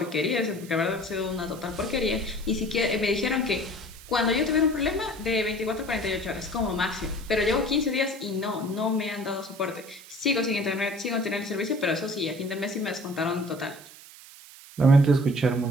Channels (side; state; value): right; noise; hiss, 19 dB below the sound